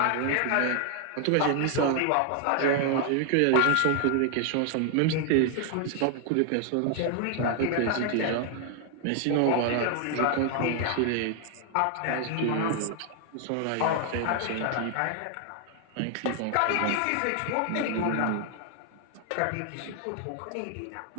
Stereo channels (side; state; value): both; different; correlation 0.00